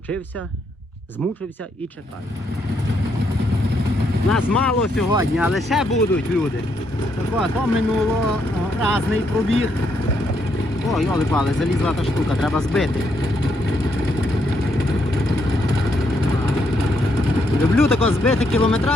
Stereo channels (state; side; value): normal; both; correlation 0.76